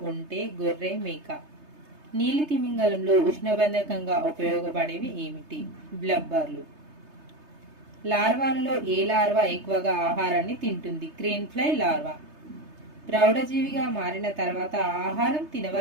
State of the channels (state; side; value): late; left; 3.3 ms